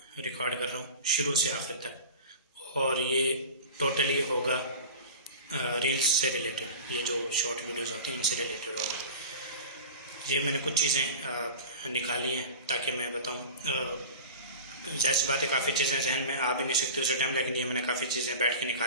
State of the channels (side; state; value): both; inverted; correlation -0.34